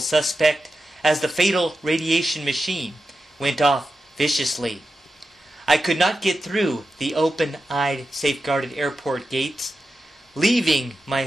suspect as the fatal radiation machine went off viciously. I could not get through the open-eyed, safeguarded airport gates, leaving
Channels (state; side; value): normal; both; correlation 0.91